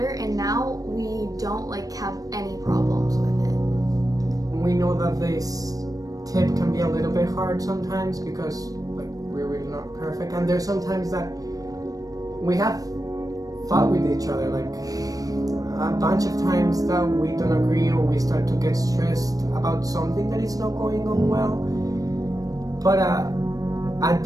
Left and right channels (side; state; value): left; late; 0.18 ms